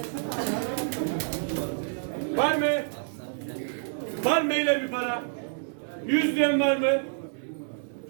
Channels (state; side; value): silent; left; digital silence